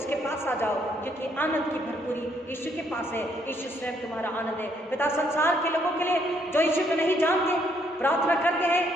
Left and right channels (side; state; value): both; normal; correlation 0.70